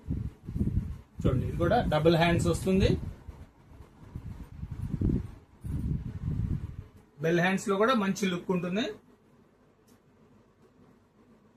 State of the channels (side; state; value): both; identical; correlation 1.00